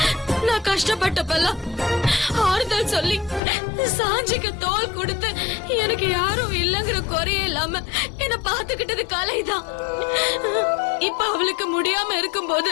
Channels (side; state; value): right; drops out; at 3.4 s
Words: நான் கஷ்டப்பட்டப்பெல்லாம் ஆறுதல் சொல்லி சாஞ்சிக்கு தோல் கொடுத்து எனக்கு யாரும் இல்லங்கிற குறையே இல்லாம என்ன பாத்துக்கிட்டது கலைதான். இப்ப அவளுக்கு முடியாம